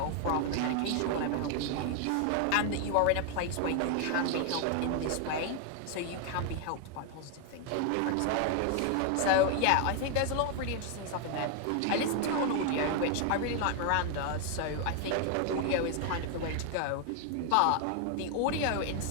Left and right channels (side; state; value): both; different; correlation 0.01